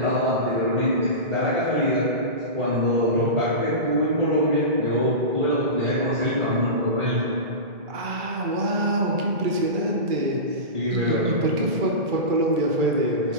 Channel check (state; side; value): late; left; 2.3 ms